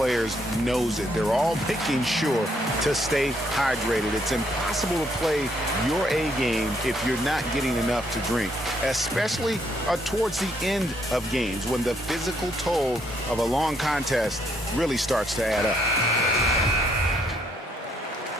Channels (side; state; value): both; normal; correlation 0.72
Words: knows it. They're all making sure to stay hydrated. It's impossible to play your A game if you're not getting enough to drink, especially towards the end of games when the physical toll of a long contest really starts to add up.